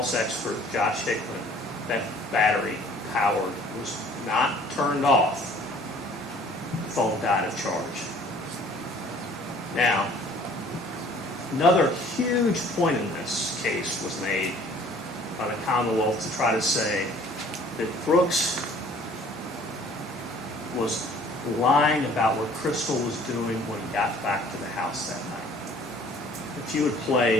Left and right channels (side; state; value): both; normal; correlation 0.53